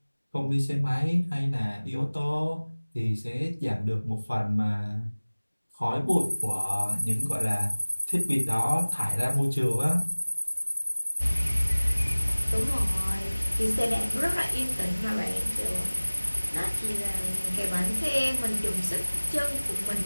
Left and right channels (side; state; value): both; inverted; correlation -1.00